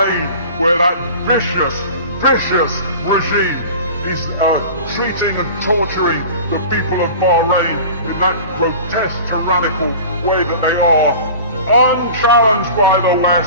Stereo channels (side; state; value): both; inverted; correlation -0.39